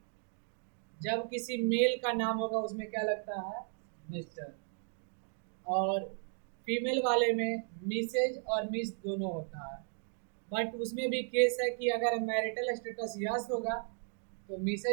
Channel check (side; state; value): left; silent; 54 dB below the other